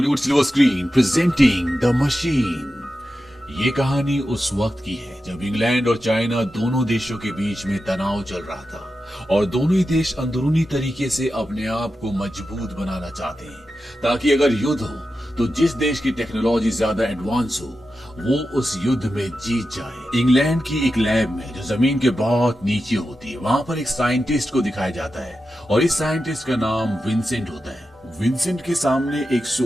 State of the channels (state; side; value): normal; both; correlation 0.91